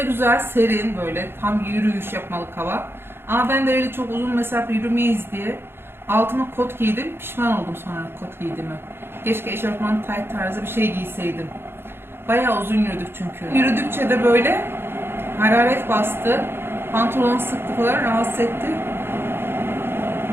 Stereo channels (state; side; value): late; left; 0.11 ms